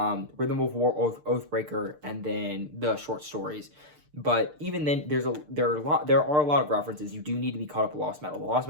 of War, Oathbreaker, and then the short stories. But even then, there are a lot of references. You do need to be caught up with Lost Metal. The Lost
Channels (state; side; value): late; left; 6.7 ms